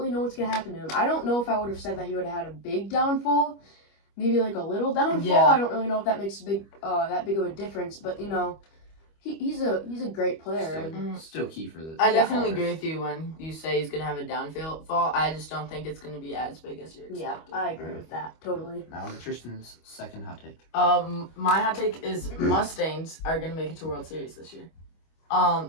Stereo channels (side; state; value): right; late; 25 ms